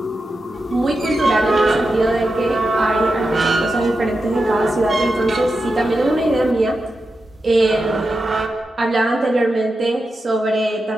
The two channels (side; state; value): both; normal; correlation 0.89